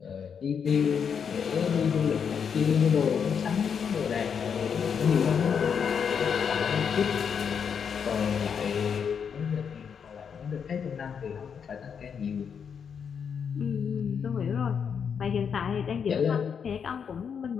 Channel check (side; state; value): right; quieter; 7.0 dB